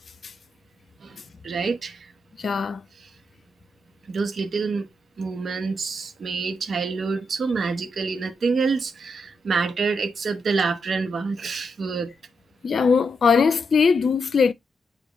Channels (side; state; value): both; normal; correlation 0.82